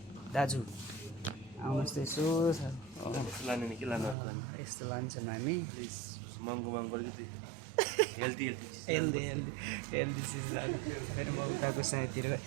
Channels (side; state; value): left; drops out; at 4.2 s